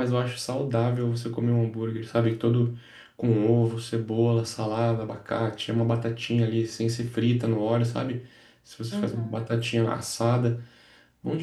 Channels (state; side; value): identical; both; correlation 1.00